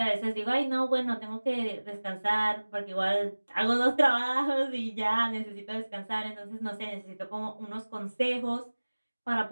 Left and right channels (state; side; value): inverted; both; correlation -1.00